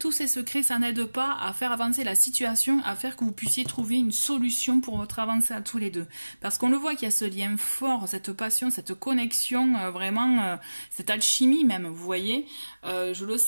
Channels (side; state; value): both; inverted; correlation -1.00